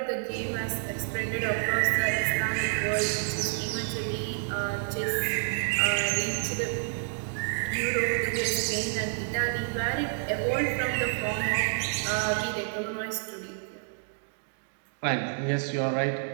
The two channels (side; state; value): left; silent; digital silence